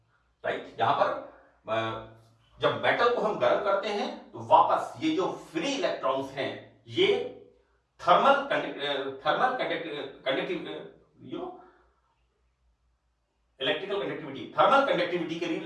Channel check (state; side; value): identical; both; correlation 1.00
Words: राइट। यहां पर जब मेटल को हम गर्म करते हैं तो वापस ये जो फ्री इलेक्ट्रॉन्स हैं ये thermal electrical conductivity, thermal conductivity के लिए,